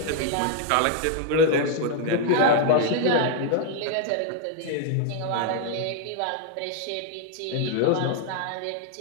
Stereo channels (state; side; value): different; both; correlation 0.00